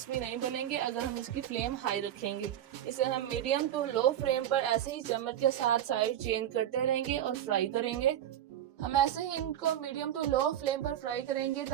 नहीं बनेंगे अगर हम इसकी फ्लेम हाई रखेंगे। इसे हम मीडियम टू लो फ्लेम पर ऐसे ही चम्मच के साथ साइड चेंज करते रहेंगे और फ्राई करेंगे। हम ऐसे ही इनको मीडियम टू लो फ्लेम पर फ्राई करेंगे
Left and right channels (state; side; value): quieter; left; 11.3 dB